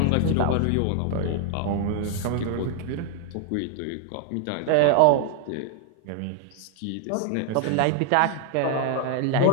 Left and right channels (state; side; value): different; both; correlation 0.00